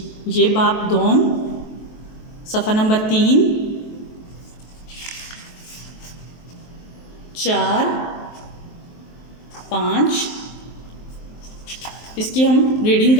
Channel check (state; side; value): late; right; 23 ms